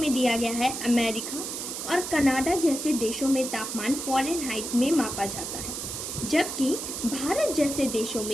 दिया गया है, अमेरिका और कनाडा जैसे देशों में तापमान फ़ारेनहाइट में मापा जाता है, जबकि भारत जैसे देशों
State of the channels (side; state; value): right; noise; hiss, 5 dB below the sound